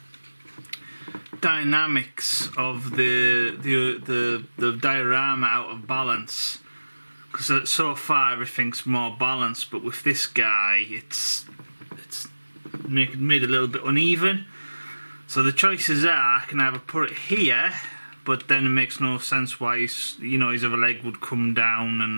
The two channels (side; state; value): both; inverted; correlation -1.00